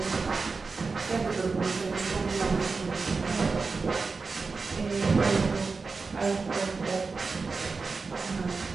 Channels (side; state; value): left; quieter; 4.4 dB